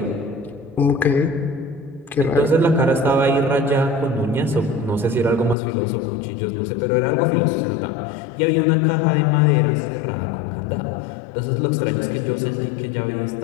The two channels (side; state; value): right; drops out; at 5.6 s